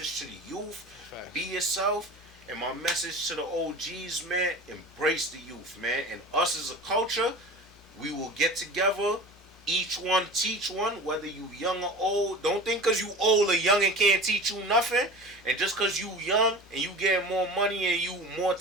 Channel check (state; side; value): normal; both; correlation 0.35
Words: to the youth. Be yourself. And my message to the OGs, man, embrace the youth, man. And us as a culture, we will get together, each one teach one, whether you young or old. Don't think because you old or young and can't teach you nothing. And just because you young and you get more money and you more